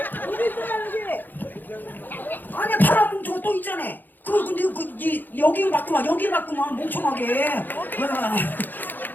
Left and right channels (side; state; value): right; late; 0.089 ms